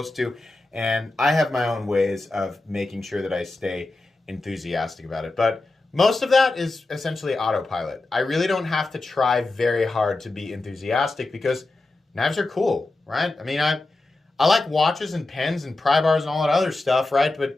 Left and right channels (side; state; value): right; quieter; 3.1 dB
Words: to. And I have my own ways of making sure that I stay enthusiastic about it. But most of that is essentially autopilot. I really don't have to try very hard to be enthusiastic because knives are cool, right? I mean, I like watches and pens and pry bars and all that other stuff, right?